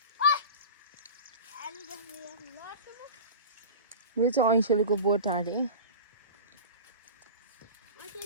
यो चाहिँ ऐसेलुको बोट अरे।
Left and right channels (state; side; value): inverted; both; correlation -0.31